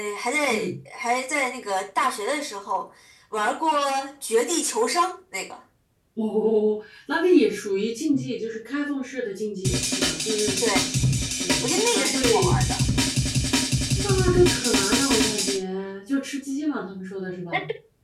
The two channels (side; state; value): both; identical; correlation 1.00